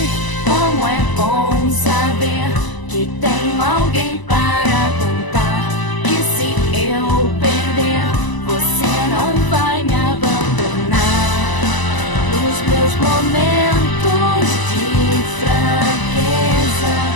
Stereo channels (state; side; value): late; right; 1.0 ms